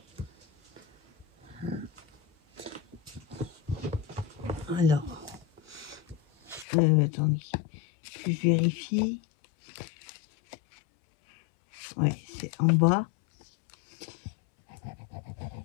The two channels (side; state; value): right; drops out; at 6.7 s